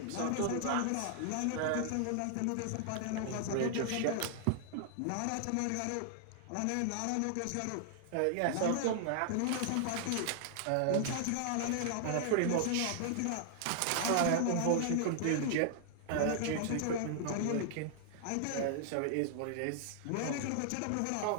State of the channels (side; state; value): both; different; correlation -0.01